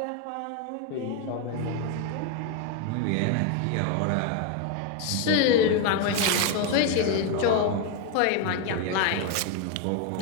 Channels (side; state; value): both; different; correlation 0.01